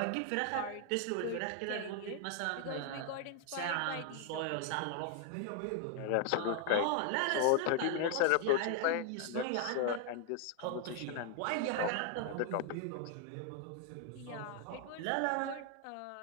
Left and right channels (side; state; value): both; different; correlation 0.00